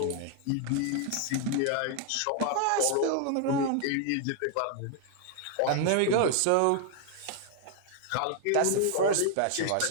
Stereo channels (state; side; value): different; both; correlation 0.00